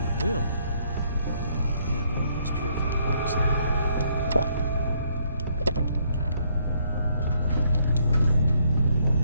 will have one of those purified waters there.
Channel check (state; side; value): inverted; both; correlation -0.70